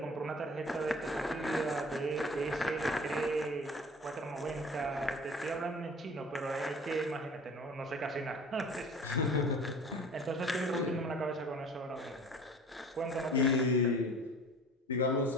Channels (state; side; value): normal; both; correlation 0.44